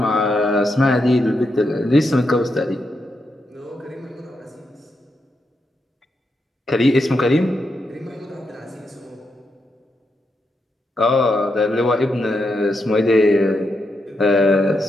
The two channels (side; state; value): both; normal; correlation 0.83